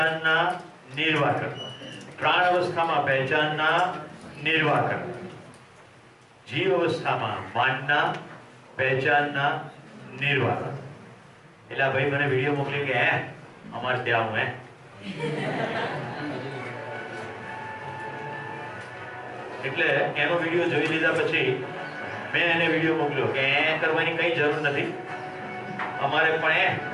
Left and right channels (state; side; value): identical; both; correlation 1.00